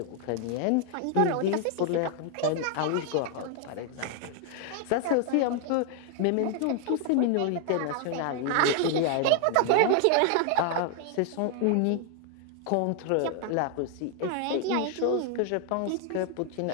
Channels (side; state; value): both; different; correlation 0.00